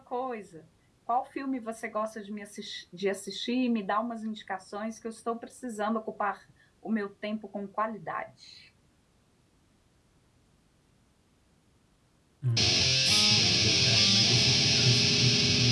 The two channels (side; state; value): both; identical; correlation 1.00